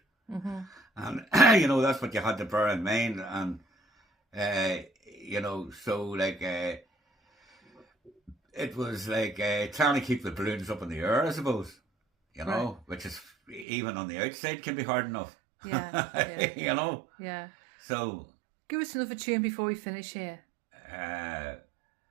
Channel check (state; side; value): drops out; left; at 13.7 s